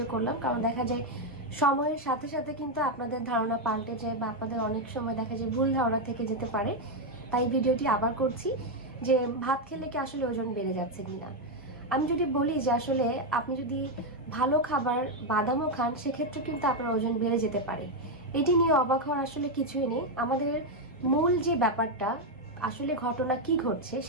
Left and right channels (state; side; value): normal; both; correlation 0.03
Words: করলাম, কারণ দেখা যায় সময়ের সাথে সাথে কিন্তু আপনাদের ধারণা পাল্টে যায় বা আপনাদের অনেক সময় দেখা যায় ভুল ধারণা থেকে যেতে পারে। তাই ভিডিওটি আবার করছি যে ভাত খেলে কি আসলে ওজন বেড়ে যাচ্ছে কিনা। আমি যদি বলি যে আসলে আপনি যদি ভালো খাবার বাদামও খান, সেক্ষেত্রে কিন্তু আপনার ওজন বেড়ে যেতে পারে। এটি নিয়ে অবাক হওয়ার আসলে কিছুই নেই। আমাদের মূল যে ব্যাপারটা, আসলে ঘটনা কি ঘটছে